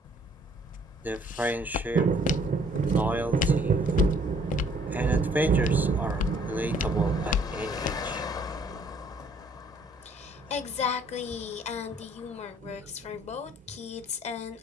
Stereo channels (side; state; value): both; normal; correlation 0.61